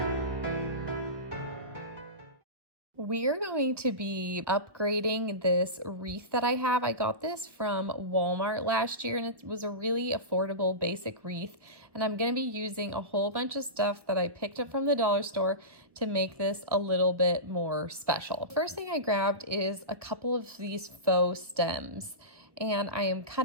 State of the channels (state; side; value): late; left; 1.0 ms